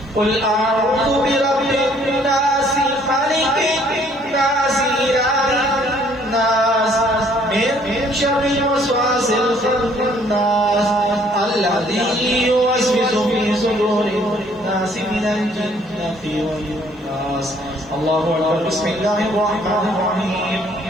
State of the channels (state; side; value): normal; both; correlation 0.62